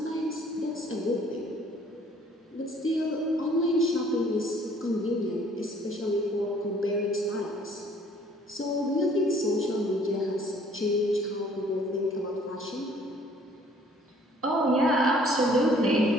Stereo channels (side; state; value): both; normal; correlation 0.58